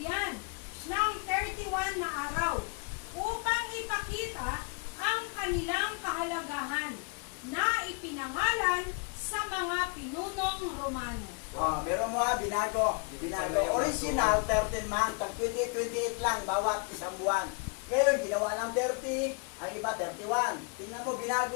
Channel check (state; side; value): quieter; right; 35.0 dB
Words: ng 31 na araw upang ipakita ang kanilang kahalagahan na ipinangalan sa mga pinunong Romano. Meron mo binago. Original, 13 month, 28 lang, bawat isang buwan. Ngayon, ginawa lang 30, ang iba 31. Tingnan mo,